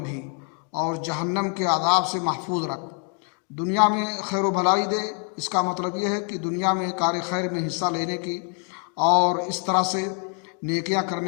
بھی، اور جہنم کے عذاب سے محفوظ رکھ۔ دنیا میں خیر و بھلائی دے، اس کا مطلب یہ ہے کہ دنیا میں کار خیر میں حصہ لینے کی اور اس طرح سے نیکیاں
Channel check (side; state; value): right; quieter; 37.7 dB